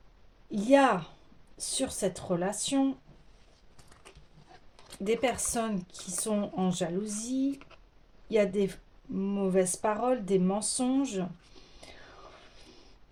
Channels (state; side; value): identical; both; correlation 1.00